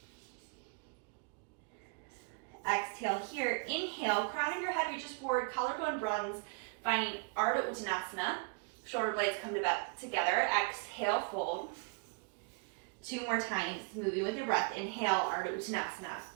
Exhale here, inhale, crown of your head reaches forward, collarbone broadens, finding Ardha Uttanasana. Shoulder blades come together, exhale, fold. 2 more times, moving with your breath. Inhale, Ardha Uttanasana.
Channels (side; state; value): left; quieter; 34.9 dB